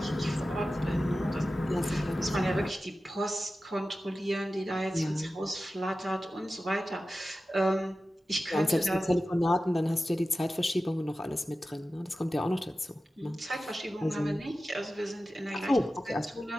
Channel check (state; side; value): normal; both; correlation 0.94